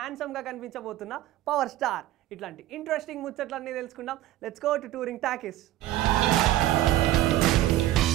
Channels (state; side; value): quieter; left; 14.6 dB